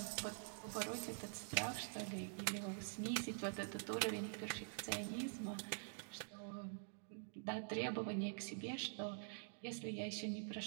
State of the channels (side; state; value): left; silent; digital silence